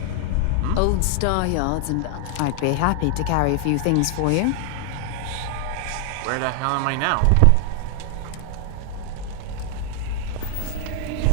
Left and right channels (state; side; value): different; both; correlation 0.00